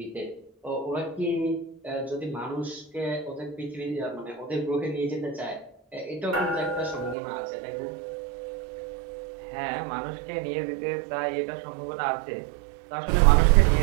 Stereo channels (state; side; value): drops out; left; at 7.2 s